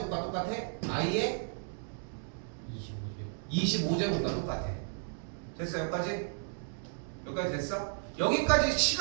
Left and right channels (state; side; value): silent; left; digital silence